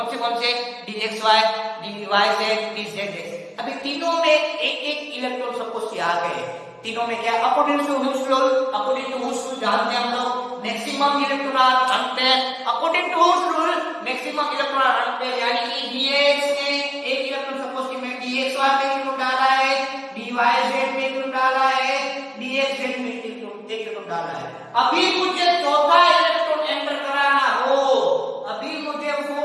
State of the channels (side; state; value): both; identical; correlation 1.00